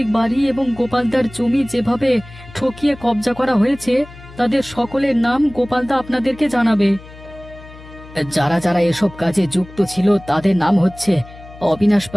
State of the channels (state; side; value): noise; left; hum, 19 dB below the sound